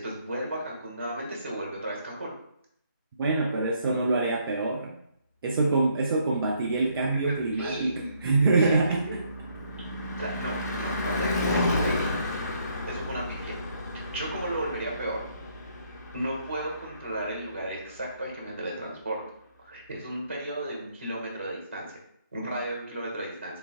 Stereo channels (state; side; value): inverted; both; correlation -0.70